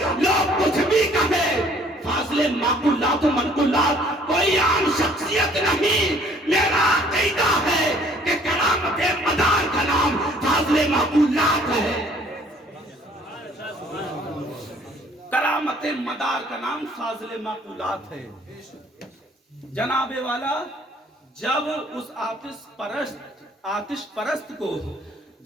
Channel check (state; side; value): normal; both; correlation 0.58